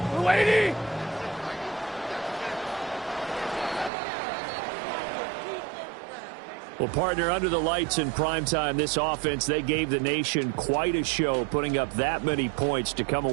Well, partner, under the lights in primetime, this offense, they gave the nation quite a show, putting up that many points to come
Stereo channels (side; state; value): left; drops out; at 3.9 s